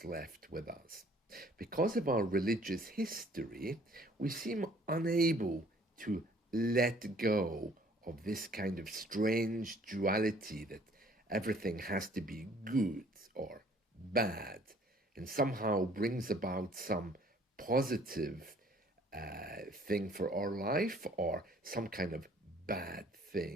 left with us. Because of our religious history, we seem unable to let go of this kind of strange duality that everything has to be good or bad, and somehow brings about some positive thing for our life or some kind of bad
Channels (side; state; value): both; normal; correlation 0.58